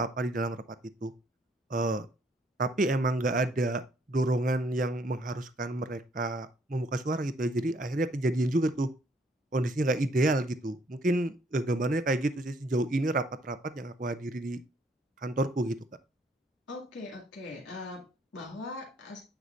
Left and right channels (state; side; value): normal; both; correlation 0.66